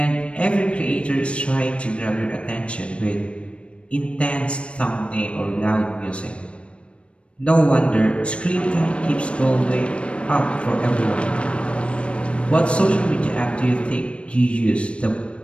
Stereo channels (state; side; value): late; right; 0.060 ms